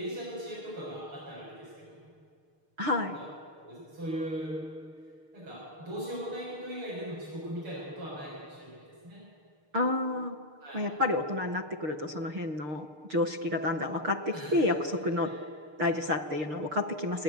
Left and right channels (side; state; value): left; late; 6.6 ms